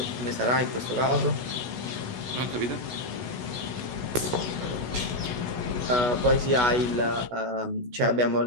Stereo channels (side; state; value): left; late; 16 ms